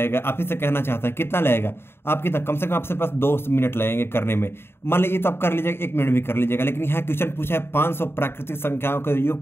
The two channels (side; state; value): right; late; 0.11 ms